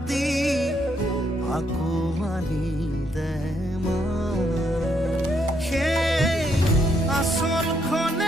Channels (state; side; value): normal; both; correlation 0.74